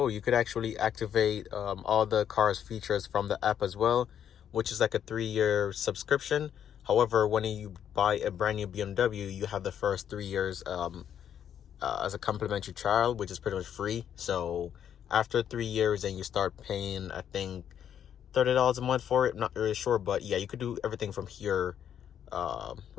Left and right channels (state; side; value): quieter; right; 9.3 dB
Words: You could actually activate all the car's features from the app as well, which is like a 3-year subscription. However, when you buy a brand new BMW, you have the first 3 years as a complimentary trial, which is pretty much free. So after 3 years, then you start paying, I think, $30 a month for it. I'm not really sure, but yeah, you could do everything from here,